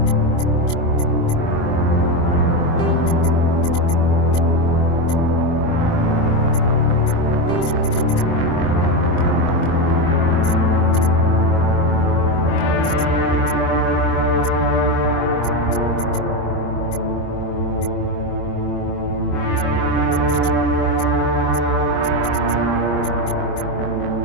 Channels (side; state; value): right; late; 24 ms